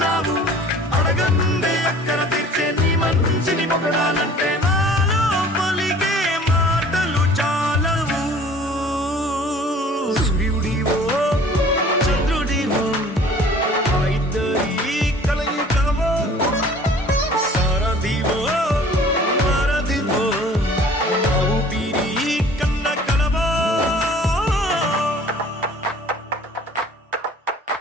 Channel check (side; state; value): both; normal; correlation 0.49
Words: అడగందే అక్కర తీర్చే నీ మంచిని పొగడాలంటే నాలో పలికే మాటలు చాలవు సూర్యుడివో చంద్రుడివో ఆ ఇద్దరి కలయికవో సారథివో వారధివో నా ఊపిరి కన్న కలవో